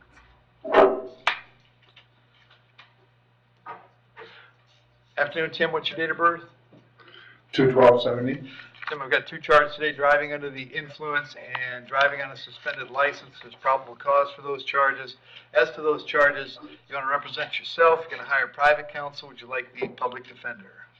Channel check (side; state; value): both; identical; correlation 1.00